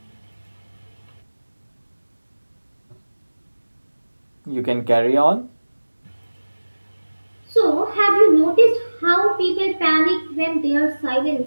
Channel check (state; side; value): inverted; both; correlation -1.00